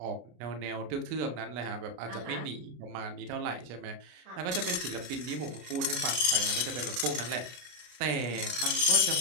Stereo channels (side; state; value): left; late; 33 ms